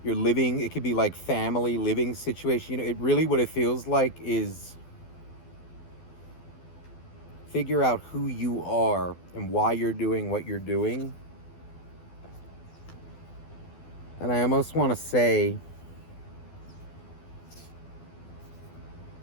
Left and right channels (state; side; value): late; right; 12 ms